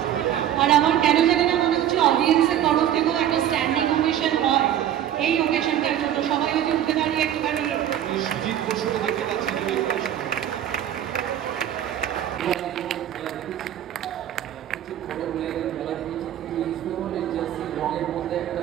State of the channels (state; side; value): quieter; left; 11.0 dB